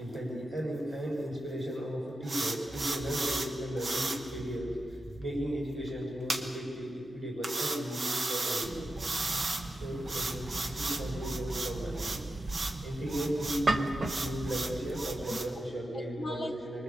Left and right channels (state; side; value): normal; both; correlation 0.90